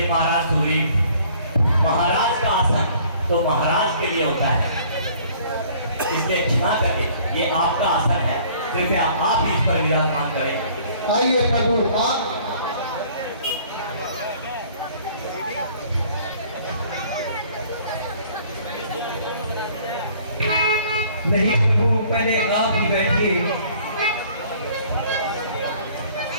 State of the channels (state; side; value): inverted; both; correlation -0.56